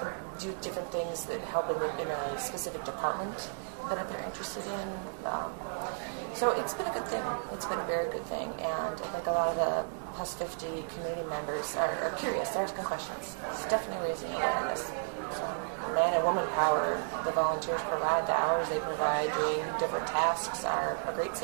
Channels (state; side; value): silent; left; digital silence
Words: do different things that help in a specific department that they're interested in. So it's been a good thing. It's been a very good thing, and I think a lot of the Plus 50 community members are curious. They're asking questions. It's definitely raising awareness. So man and woman power, the volunteers provide, the hours they provide doing different tasks are a great